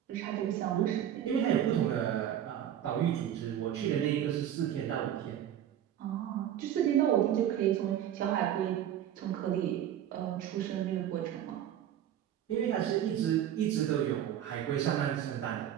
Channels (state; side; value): quieter; left; 10.7 dB